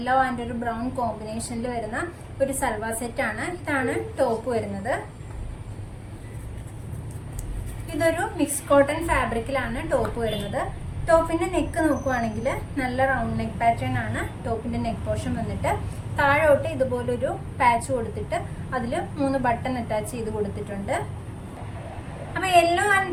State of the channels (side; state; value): both; identical; correlation 1.00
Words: ആൻഡ് ഒരു ബ്രൗൺ കോമ്പിനേഷനിൽ വരുന്ന ഒരു സൽവാർ സെറ്റാണ്. ഇതാണ് ടോപ്പ് വരുന്നത്. ഇതൊരു മിക്സ് കോട്ടൺ ഫാബ്രിക്കിലാണ് ടോപ്പ് വരുന്നത്. ടോപ്പിന്റെ നെക്ക് നോക്കുവാണെങ്കിൽ നല്ല റൗണ്ട് നെക്ക് പാറ്റേൺ ആണ് ടോപ്പിന്റെ നെക്ക് പോർഷൻ വന്നിട്ട്. താഴോട്ട് ഇതുപോലൊരു പാച്ച് കൊടുത്തിട്ട് അതിൽ 3 ബട്ടൺ അറ്റാച്ച് ചെയ്ത് കൊടുത്തിട്ടുണ്ട്. അപ്പോൾ യെല്ലോ ആൻഡ്